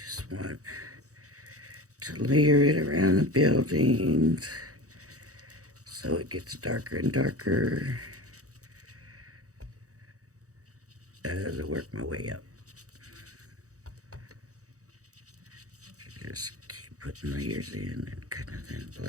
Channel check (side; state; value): left; late; 0.66 ms